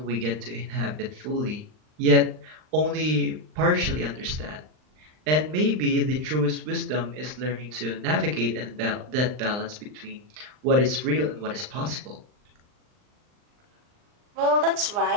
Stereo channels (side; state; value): left; late; 39 ms